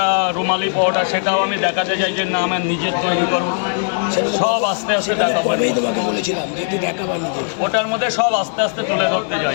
রুমালি পরোটা, সেটাও আমি দেখাতে চাই যে না, আমার নিজের তৈরি করবো। সব আস্তে আস্তে দেখাবো। তোমাকে বলেছিলাম যে দেখাবো নিজে। ওটার মধ্যে সব আস্তে আস্তে তুলে ধরতে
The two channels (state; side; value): silent; right; 62 dB below the other